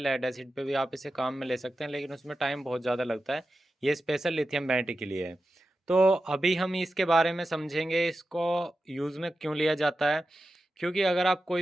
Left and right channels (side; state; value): both; normal; correlation 0.92